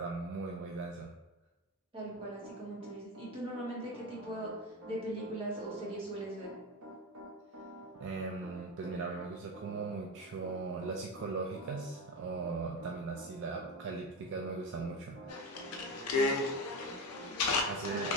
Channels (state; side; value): normal; both; correlation 0.20